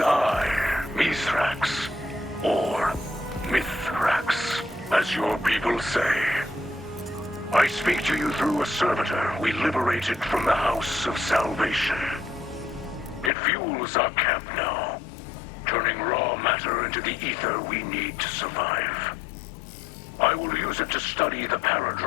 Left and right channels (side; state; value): right; drops out; at 13.3 s